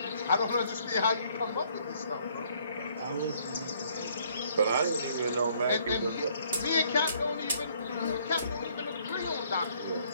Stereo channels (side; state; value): both; inverted; correlation -0.64